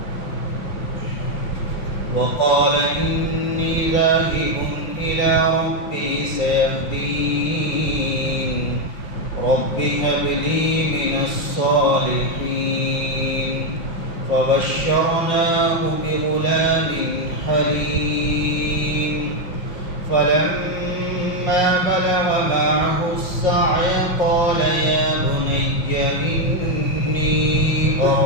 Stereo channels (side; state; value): right; late; 5.8 ms